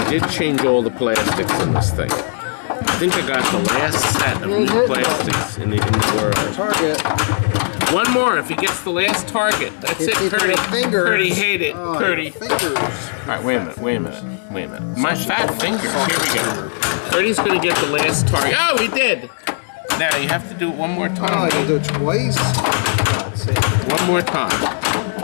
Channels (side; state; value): right; silent; digital silence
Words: did change all the plastics in this thing. I think I got the last set of new plastics in the world. Target. One more if he gets the last target. That's it, Curdy. Curdy, hate it, Oh, Curdy. fingers. All right, wait a minute. My fat fingers. Here we go. Curdy's going to get the last target. Oh, he did. Now you have to do it one more Oh, time. you do it twice? Let's see. One more time.